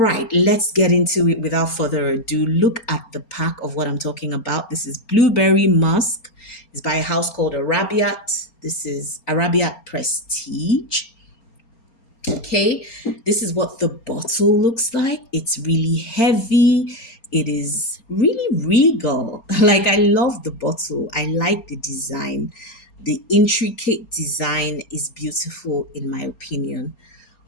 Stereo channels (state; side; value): late; right; 4.3 ms